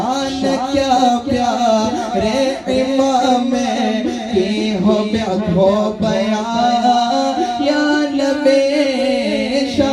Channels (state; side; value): identical; both; correlation 1.00